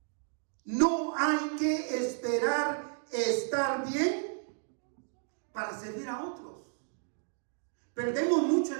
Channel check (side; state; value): left; silent; 56 dB below the other